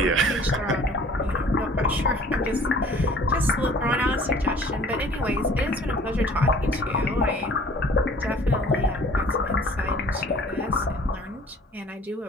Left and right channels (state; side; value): normal; both; correlation 0.51